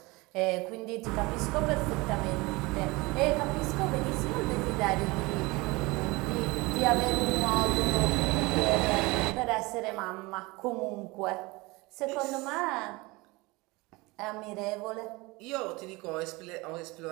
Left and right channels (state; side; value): quieter; left; 23.6 dB